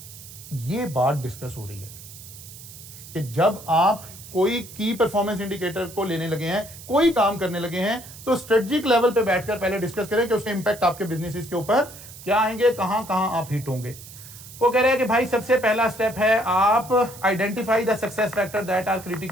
ये बात डिस्कस हो रही है कि जब आप कोई की परफॉर्मेंस इंडिकेटर को लेने लगे हैं, कोई काम करने लगे हैं, तो स्ट्रेटेजिक लेवल पे बैठकर पहले डिस्कस करें कि उसके इंपैक्ट आपके बिजनेस के ऊपर क्या आएंगे, कहां कहां आप हिट होंगे। वो कह रहे हैं कि भाई सबसे पहला स्टेप है आप identify the success factor that are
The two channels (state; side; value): noise; right; hiss, 16 dB below the sound